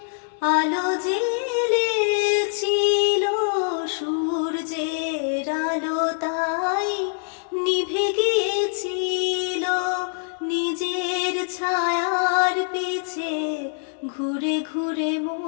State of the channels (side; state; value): right; silent; digital silence